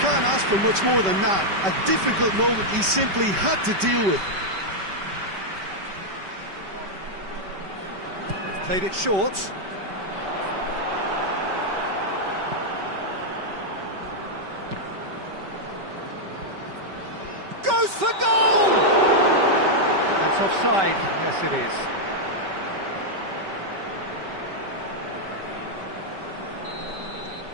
ask for much more than that. A difficult moment he simply had to deal with. They've played it short. Goes for goal! That's offside, yes it is.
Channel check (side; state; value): left; late; 5.2 ms